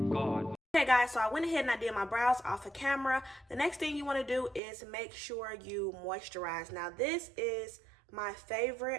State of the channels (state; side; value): drops out; left; at 4.6 s